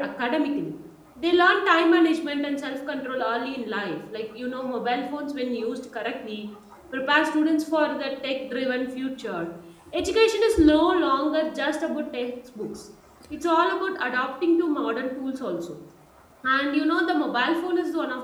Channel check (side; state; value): both; identical; correlation 1.00